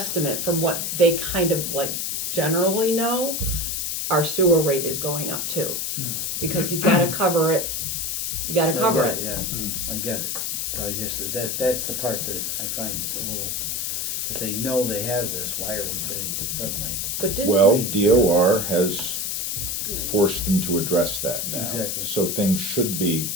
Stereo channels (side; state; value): left; noise; hiss, 1 dB below the sound